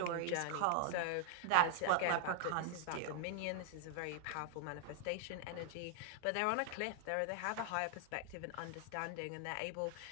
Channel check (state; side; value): different; both; correlation 0.00